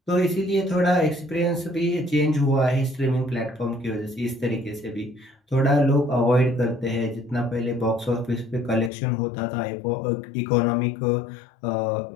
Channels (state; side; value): drops out; right; at 8.9 s